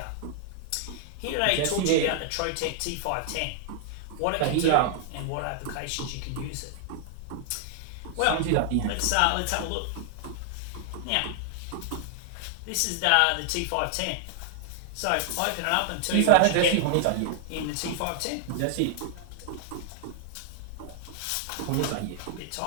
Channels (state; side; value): different; both; correlation -0.01